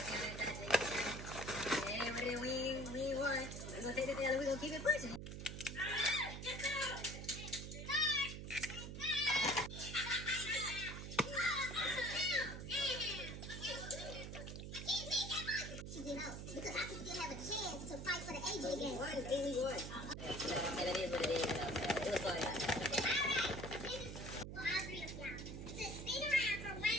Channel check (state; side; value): noise; right; hum, 7 dB below the sound